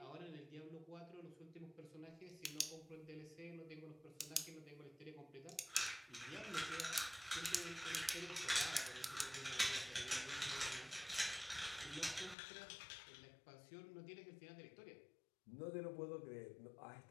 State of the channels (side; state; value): right; drops out; at 12.4 s